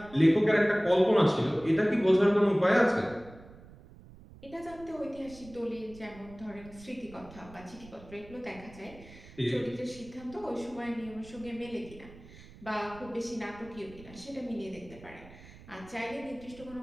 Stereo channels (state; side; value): noise; right; rumble, 20 dB below the sound